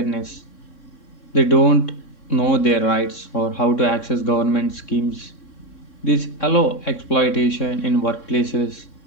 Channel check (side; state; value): right; late; 3.6 ms